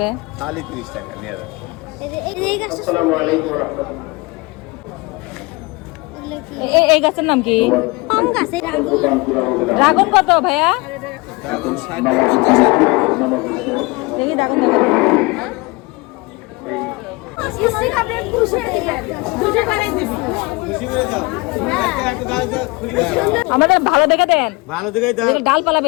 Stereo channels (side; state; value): right; quieter; 25.3 dB